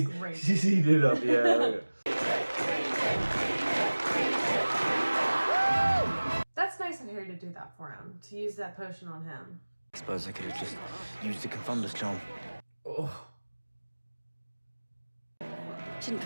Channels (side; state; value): both; inverted; correlation -1.00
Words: great. She's eating it up, yeah. That's nice of Harry to do that for him. To use that potion on him. I suppose I could have just used the Confunder's charm. Oh. Didn't